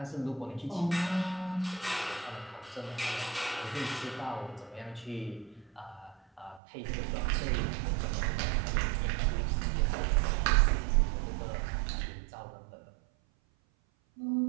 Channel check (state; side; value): drops out; left; at 6.6 s